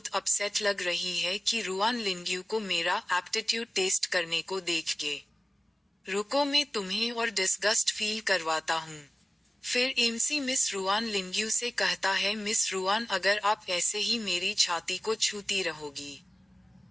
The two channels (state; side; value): normal; both; correlation 0.97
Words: अपसेट लग रही है कि रुआन लिंग्यू को मेरा एप्टीट्यूड टेस्ट करने को देख के। रुको, मैं तुम्हें और डिस्गस्ट फील करवाता हूँ। फिर एमसी मिस रुआन लिंग्यू से कहता है, मिस रुआन अगर आप ऐसे ही मेरी छाती को छूती रहोगी